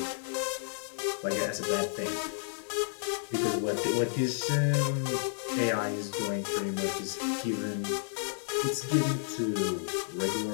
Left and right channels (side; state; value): right; silent; digital silence